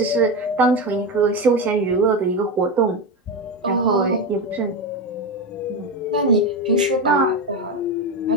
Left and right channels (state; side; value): normal; both; correlation 0.16